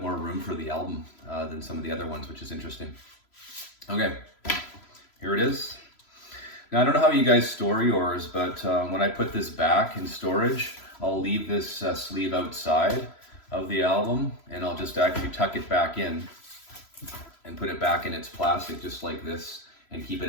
more room for the album than some of the other ones, which is interesting. Okay, here it is. Now, I don't know how you guys store yours, but when I put this back in storage, I'll leave this sleeve outside of the album, and I'll just actually tuck it back in and put it back in its plastic just like this, and keep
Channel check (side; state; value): right; late; 3.0 ms